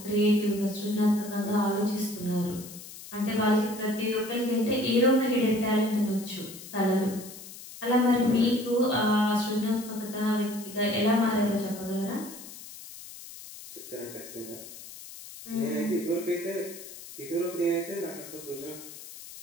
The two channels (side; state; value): left; noise; hiss, 15 dB below the sound